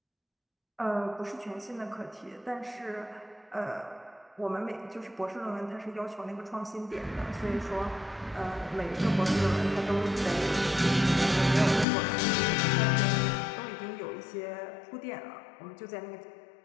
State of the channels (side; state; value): right; drops out; at 11.9 s